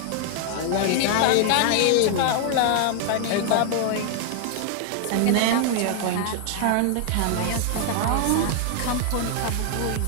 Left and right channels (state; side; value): different; both; correlation 0.00